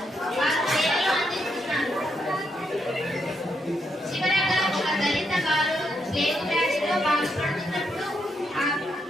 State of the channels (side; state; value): both; normal; correlation 0.79